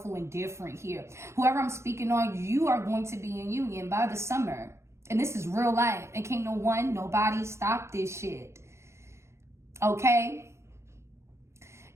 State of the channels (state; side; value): late; left; 0.13 ms